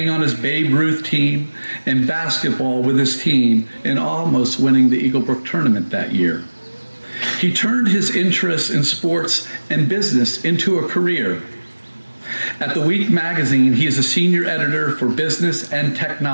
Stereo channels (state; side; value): inverted; both; correlation -1.00